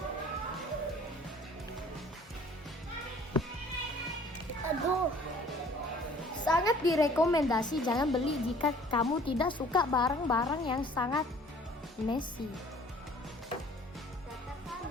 Aduh. Sangat direkomendasi jangan beli jika kamu tidak suka barang-barang yang sangat messy. Berantakan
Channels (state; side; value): normal; both; correlation 0.53